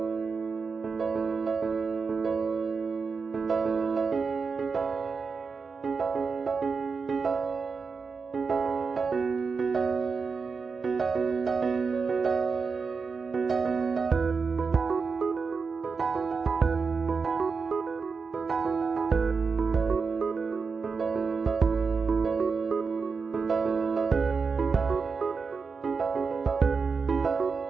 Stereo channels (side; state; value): left; quieter; 5.0 dB